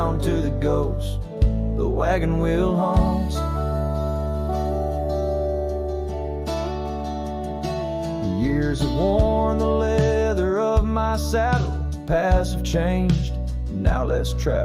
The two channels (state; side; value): identical; both; correlation 1.00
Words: to the ghost the wagon wheel haunts. Years have worn the leather of my saddle, paths have changed, now let's